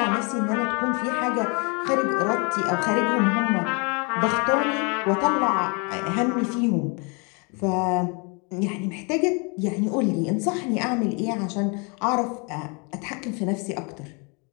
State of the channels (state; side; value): quieter; right; 33.2 dB